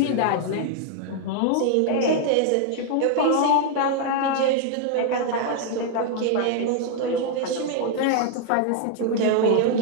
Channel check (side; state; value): both; different; correlation 0.00